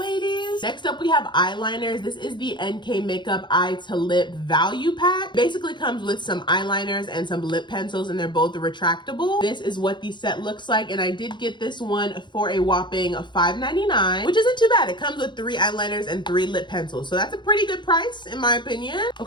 Next up, we have eyeliners. This is the NK Makeup Eye to Lip Value Pack. Basically comes with some eyeliners and some lip pencils, and they're both retractable. This is what the set looks like, and I did get this one for a whopping $5.99, which isn't too bad. It comes with 3 eyeliners and 3 lip pencils, so that's a pretty good price in my opinion.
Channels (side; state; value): right; late; 0.22 ms